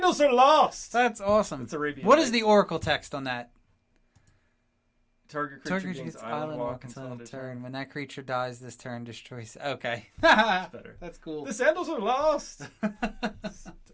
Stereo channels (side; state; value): both; identical; correlation 1.00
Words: are lost! That's awesome. It's Arabian. What is the oracle text on that? Target creature gains island walk until end of turn. When that creature dies this turn, destroys... Okay. That's better. That's cool. The sandals are lost!